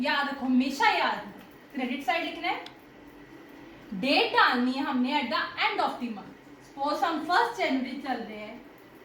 रखो, हमेशा याद रखो, क्रेडिट साइड लिखना है. डेट डालनी है हमने at the end of the month. Suppose हम 1 जनवरी चल रहे हैं,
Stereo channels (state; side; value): identical; both; correlation 1.00